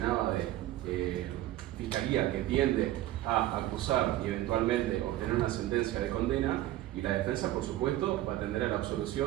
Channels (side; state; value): left; quieter; 14.8 dB